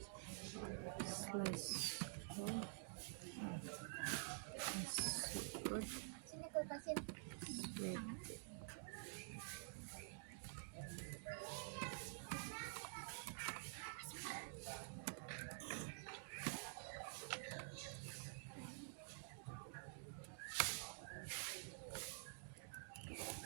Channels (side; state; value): left; silent; digital silence